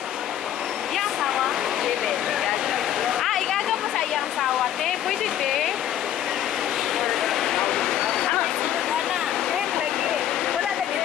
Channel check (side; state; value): right; quieter; 11.1 dB